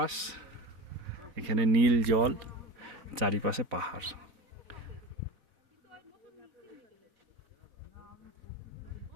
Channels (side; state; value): left; late; 4.0 ms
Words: এখানে নীল জল, চারিপাশে পাহাড়।